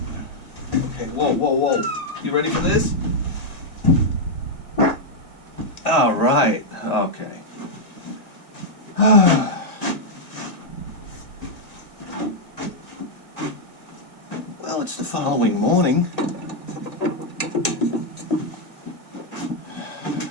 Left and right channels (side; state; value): right; late; 2.0 ms